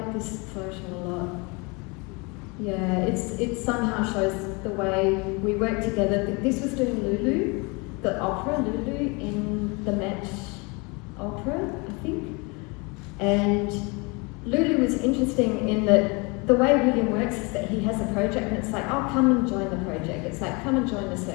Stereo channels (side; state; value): right; quieter; 29.0 dB